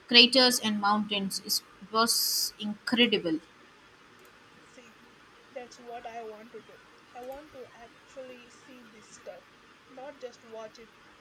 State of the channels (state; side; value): identical; both; correlation 1.00